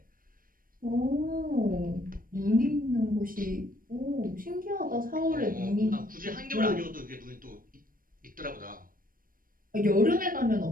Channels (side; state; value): left; late; 0.41 ms